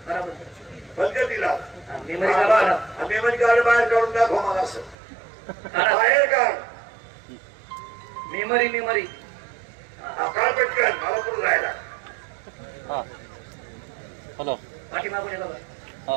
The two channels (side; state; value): left; drops out; at 5.0 s